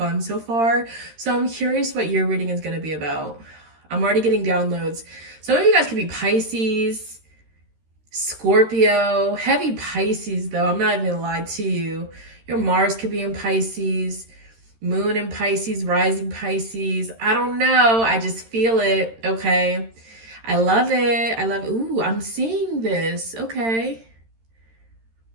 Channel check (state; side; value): late; left; 13 ms